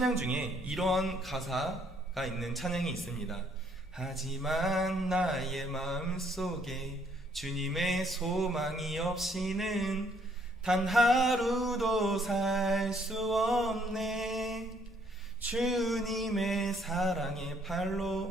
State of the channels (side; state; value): both; normal; correlation 0.66